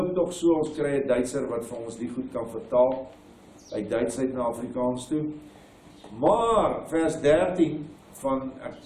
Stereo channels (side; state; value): both; identical; correlation 1.00